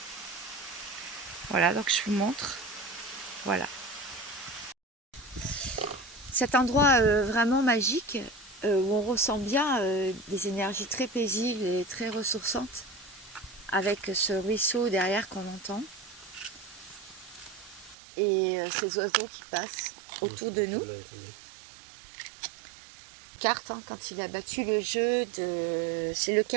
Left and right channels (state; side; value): drops out; left; at 17.9 s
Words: Voilà, donc je vous montre. Voilà. Cet endroit vraiment magique où on ressent bien des énergies très paisibles et très ressourçantes avec ce ruisseau derrière qu'on entend et ces oiseaux qui passent autour de nous. Carte, hein, quand il a battu le jeu de... C'est